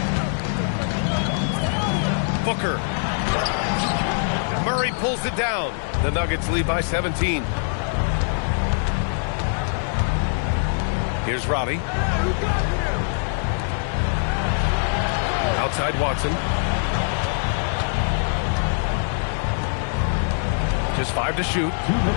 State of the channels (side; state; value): right; silent; digital silence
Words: Booker. Murray pulls it down. The Nuggets lead by 17. Here's Robbie. Outside Watson. Just 5 to shoot.